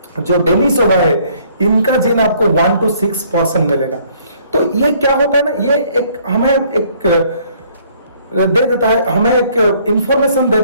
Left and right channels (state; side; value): inverted; both; correlation -0.62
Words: जो डेनिसोवा है इनका जीन आपको 1 to 6% मिलेगा। तो ये क्या होता है ना, ये एक हमें एक दे देता है, हमें एक इंफॉर्मेशन